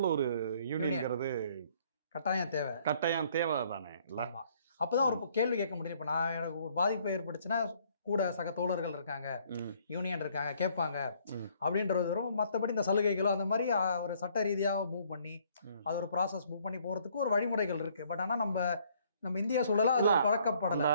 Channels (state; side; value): inverted; both; correlation -0.63